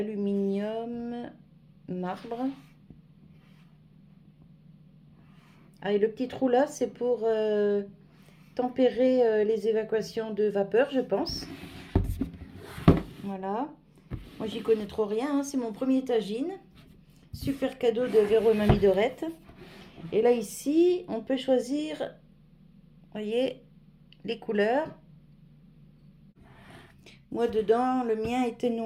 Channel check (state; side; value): identical; both; correlation 1.00